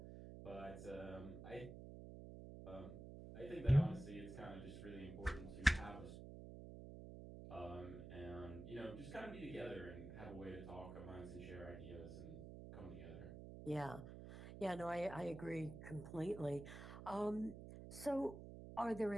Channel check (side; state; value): right; noise; hum, 10 dB below the sound